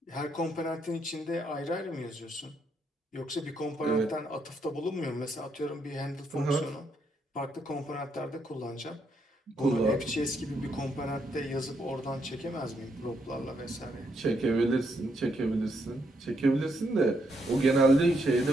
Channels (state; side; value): normal; both; correlation 0.77